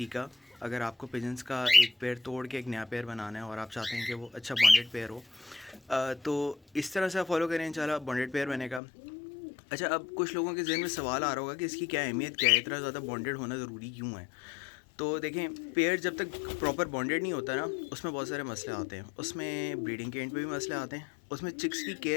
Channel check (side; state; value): right; drops out; at 8.8 s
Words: अगर आपको पिजन्स का एक पेयर तोड़ के एक नया पेयर बनाना है और आप चाहते हैं कि वो अच्छा बॉन्डेड पेयर हो, तो इस तरह से आप फॉलो करें इंशाल्लाह बॉन्डेड पेयर बनेगा। अच्छा, अब कुछ लोगों के ज़हन में सवाल आ रहा होगा कि इसकी क्या अहमियत क्या है, इतना ज़्यादा बॉन्डेड होना ज़रूरी क्यों है। तो देखें, पेयर जब तक प्रॉपर बॉन्डेड नहीं होता ना, उसमें बहुत सारे मसले आते हैं। उसमें ब्रीडिंग के एंड पे भी मसले आते हैं, उसमें चिक्स की